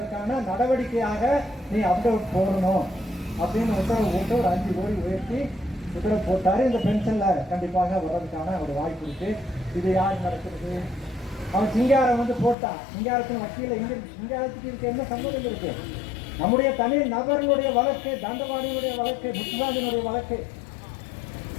நடவடிக்கையாக நீ அப்டேட் போடணும் அப்படின்னு உத்தரவு போட்டு ஒரு 5 கோடி உயர்த்தி உத்தரவு போட்டாரு. இந்த பென்ஷன்ல கண்டிப்பாக வர்றதுக்கான ஒரு வாய்ப்பு இருக்கு. இது யார் நடக்கிறது? அவன் சிங்காரம் போட்டான். சிங்காரத்தின் வக்கீல இங்க சிங்காரத்துக்கு இருக்க என்ன சம்பந்தம் இருக்கு? நம்முடைய தனி நபர்களுடைய வழக்கு, தண்டவாணியுடைய வழக்கு, முத்துராஜனுடைய வழக்கு,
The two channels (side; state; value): right; drops out; at 12.6 s